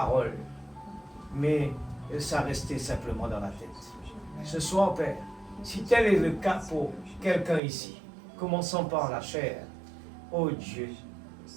mais ça restait simplement dans la tête. Ce soir, Père, si tel est le cas pour quelqu'un ici, commençons par la chair. Oh Dieu,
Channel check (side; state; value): left; drops out; at 7.6 s